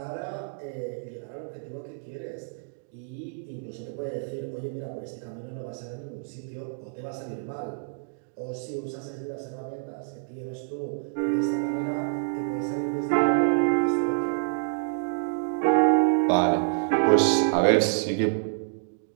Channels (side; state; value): left; silent; digital silence